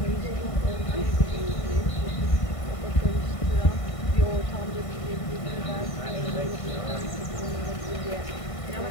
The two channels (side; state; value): right; late; 1.5 ms